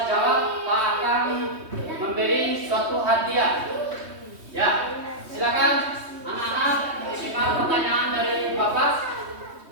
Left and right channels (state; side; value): late; left; 3.2 ms